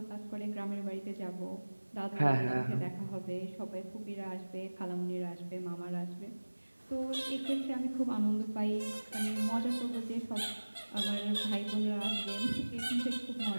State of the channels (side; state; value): both; inverted; correlation -1.00